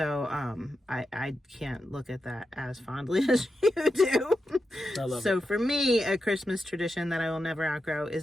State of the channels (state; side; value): normal; both; correlation 0.88